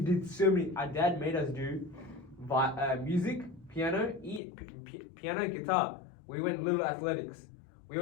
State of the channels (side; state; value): right; drops out; at 4.4 s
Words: so many. Our dad made us do music, piano, piano and guitar. We went little athletics. We